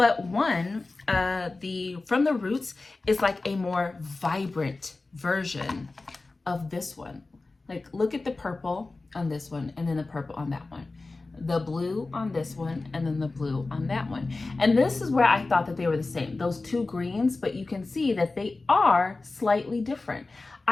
one, the From the Roots is like a more vibrant version of this one. Like look at the purple on this one and then the purple on that one. The blue on this one and then the blue on that one. And this is where I thought that they were the same, those two greens, but you can see that they are slightly different.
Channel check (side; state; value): right; quieter; 3.4 dB